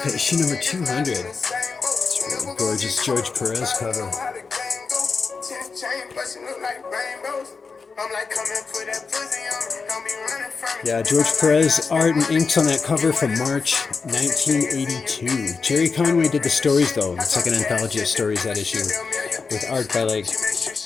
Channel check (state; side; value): quieter; right; 4.9 dB